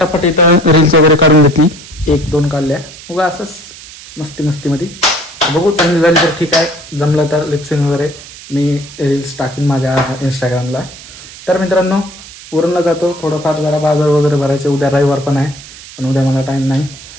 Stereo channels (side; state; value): right; noise; hiss, 17 dB below the sound